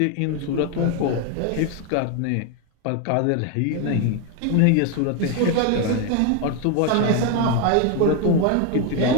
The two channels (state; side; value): different; both; correlation 0.01